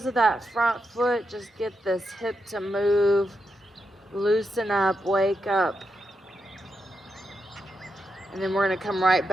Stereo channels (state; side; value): normal; both; correlation 0.85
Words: of that front foot. Just get this hip to move. Loosen up. Wake up. And then we're going to come right